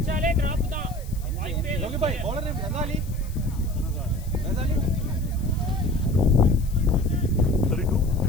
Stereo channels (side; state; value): left; noise; hiss, 21 dB below the sound